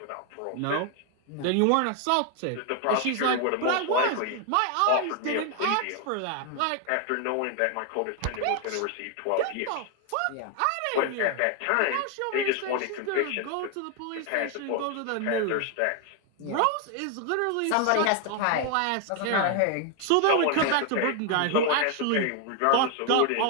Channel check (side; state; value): both; different; correlation 0.01